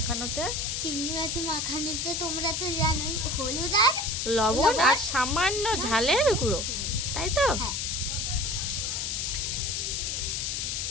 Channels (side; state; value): left; noise; hiss, 1 dB below the sound